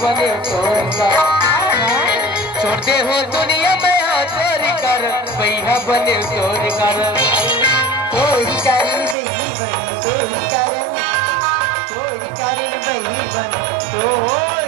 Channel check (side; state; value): left; drops out; at 9.2 s